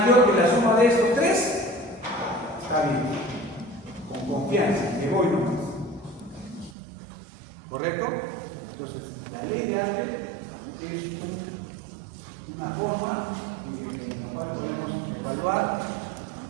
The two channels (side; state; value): left; drops out; at 6.8 s